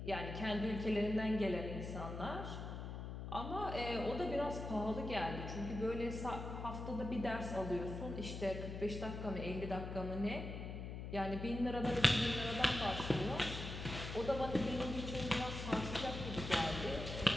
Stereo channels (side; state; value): left; noise; hum, 6 dB below the sound